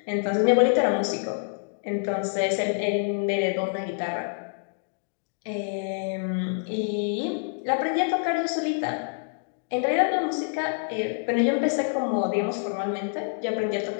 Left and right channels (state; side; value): silent; right; digital silence